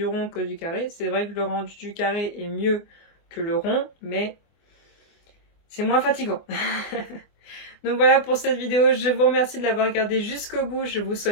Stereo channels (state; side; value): late; right; 24 ms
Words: rond que du carré. C'est vrai que le rendu du carré est mieux que le rond, mais c'est moins fatigant. Donc voilà pour cette vidéo. Je vous remercie de l'avoir regardée jusqu'au bout. Je vous